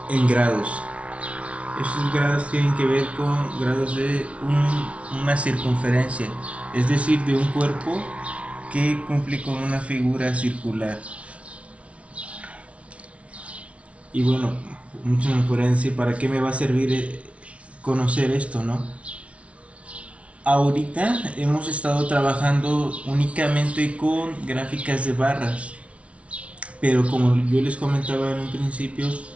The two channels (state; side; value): late; left; 0.063 ms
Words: en grados. Estos grados tienen que ver con grados de una circunferencia, es decir, de un cuerpo que cumple con una figura circular. Y bueno, muchos me podrían decir, ¿para qué me va a servir conocer esto, no? Ahorita hemos estado trabajando únicamente con gráficas de barras, pero como yo les comentaba en un principio,